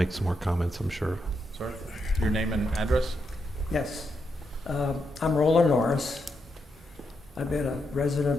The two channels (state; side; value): normal; both; correlation 0.83